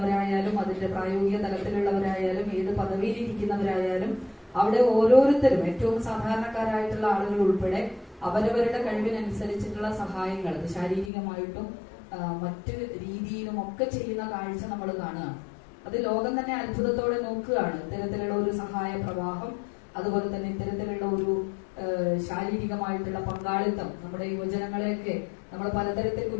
അതിന്റെ പ്രായോഗിക തലത്തിലുള്ളവരായാലും ഏത് പദവിയിലിരിക്കുന്നവരായാലും അവിടെ ഓരോരുത്തരും ഏറ്റവും സാധാരണക്കാരായിട്ടുള്ള ആളുകൾ ഉൾപ്പെടെ അവരവരുടെ കഴിവിനനുസരിച്ചിട്ടുള്ള സഹായങ്ങൾ അത് ശാരീരികമായിട്ടും മറ്റു രീതിയിലും ഒക്കെ ചെയ്യുന്ന കാഴ്ച നമ്മൾ കാണുകയാണ്. അത് ലോകം തന്നെ അത്ഭുതത്തോടെ നോക്കുകയാണ്. ഇത്തരത്തിലുള്ള ഒരു സഹായ പ്രവാഹം, അതുപോലെ തന്നെ ഇത്തരത്തിലുള്ള ഒരു ശാരീരികമായിട്ടുള്ള പങ്കാളിത്തം നമ്മുടെ യുവജനങ്ങളെയൊക്കെ നമ്മൾ പലതരത്തിൽ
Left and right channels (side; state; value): right; drops out; at 11.1 s